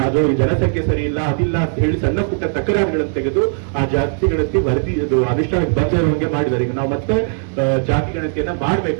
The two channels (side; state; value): left; silent; digital silence